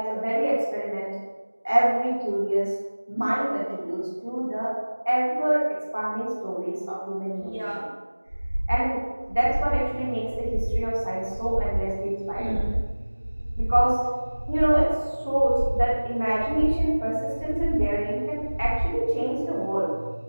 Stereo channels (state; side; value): inverted; both; correlation -1.00